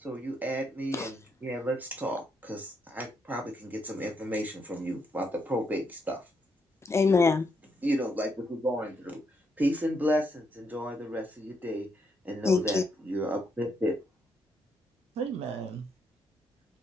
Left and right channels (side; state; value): both; normal; correlation 0.77